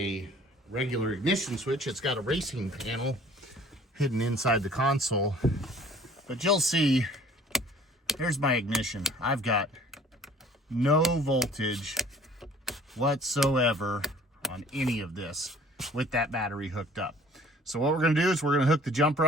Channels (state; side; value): normal; both; correlation 0.52